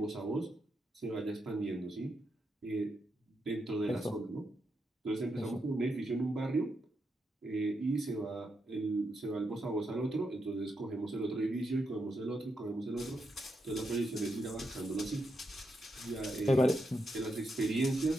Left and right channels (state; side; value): normal; both; correlation 0.83